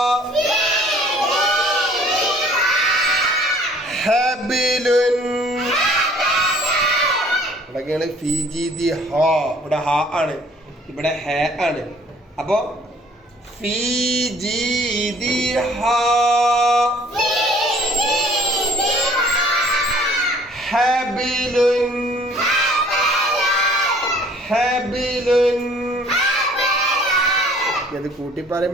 حبل ഇവിടെയൊക്കെയാണ് ഫി ജി ദി ഹ. ഇവിടെ ഹ ആണ്, ഇവിടെ ഹ ആണ്. അപ്പോ ഫി ജി ദി ഹ ഹബിലുൻ ഹബിലുൻ. ഇത് കൂട്ടി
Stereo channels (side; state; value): both; normal; correlation 0.55